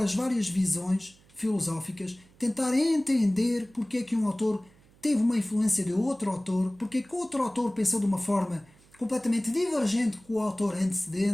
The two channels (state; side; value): noise; right; hum, 29 dB below the sound